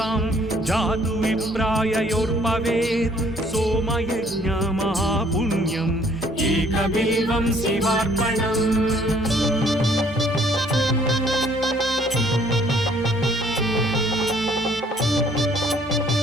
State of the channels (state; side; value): normal; both; correlation 0.61